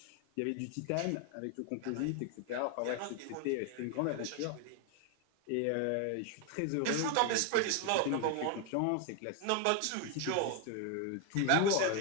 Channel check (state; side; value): different; both; correlation 0.01